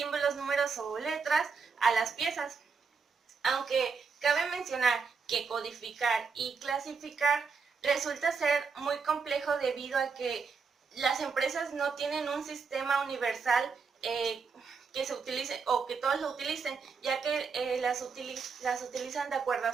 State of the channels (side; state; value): left; quieter; 5.3 dB